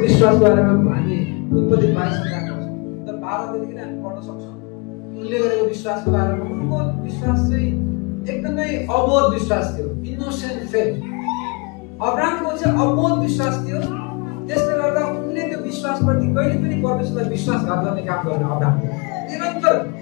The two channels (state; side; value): quieter; right; 29.5 dB